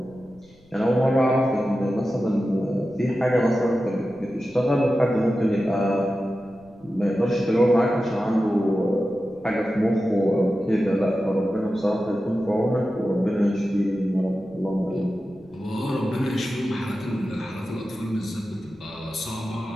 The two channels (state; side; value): noise; left; rumble, 28 dB below the sound